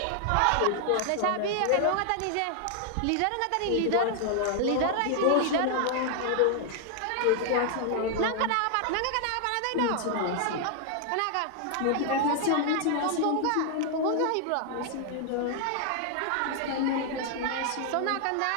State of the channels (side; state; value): both; different; correlation 0.00